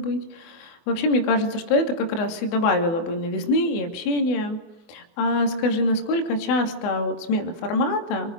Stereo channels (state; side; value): late; right; 24 ms